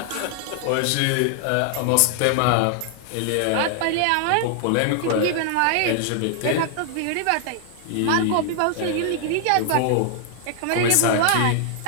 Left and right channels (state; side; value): different; both; correlation 0.00